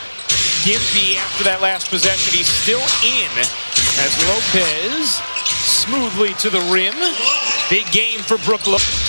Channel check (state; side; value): inverted; both; correlation -1.00